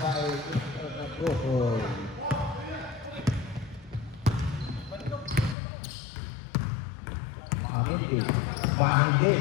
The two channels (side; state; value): right; drops out; at 5.6 s